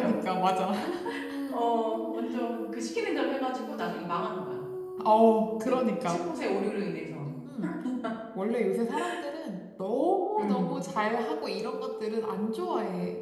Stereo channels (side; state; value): both; identical; correlation 1.00